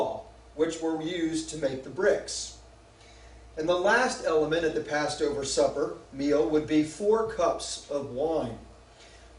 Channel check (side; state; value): both; identical; correlation 1.00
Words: which were used to make the bricks. And the last element at the Passover supper meal would be 4 cups of wine.